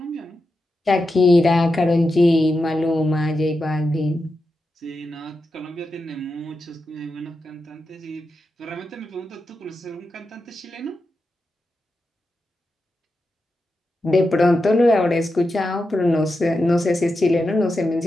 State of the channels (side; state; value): both; normal; correlation 0.89